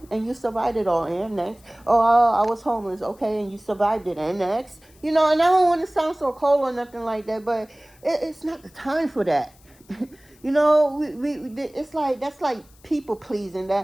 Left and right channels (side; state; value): left; noise; hiss, 29 dB below the sound